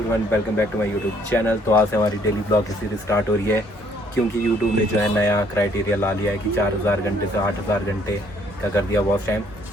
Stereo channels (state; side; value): normal; both; correlation 0.64